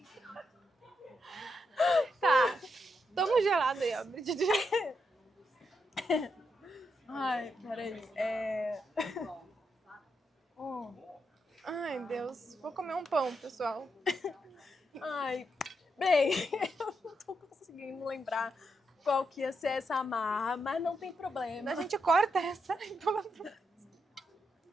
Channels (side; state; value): both; normal; correlation 0.82